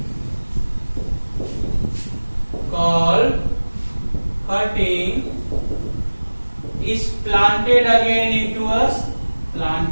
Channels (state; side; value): inverted; both; correlation -1.00